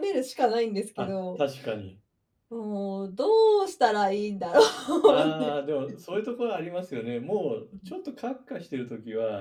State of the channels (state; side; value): identical; both; correlation 1.00